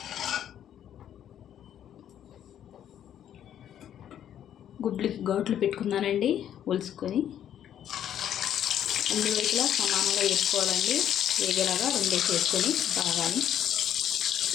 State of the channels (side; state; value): right; quieter; 10.2 dB